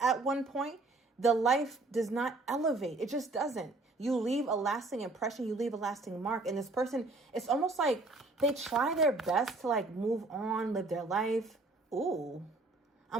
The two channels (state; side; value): quieter; left; 3.3 dB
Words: one point, the life does not elevate. It just doesn't. You leave a lasting impression. You leave a lasting mark. And this person, it's almost like they try their best to like move on, live their life. Ooh.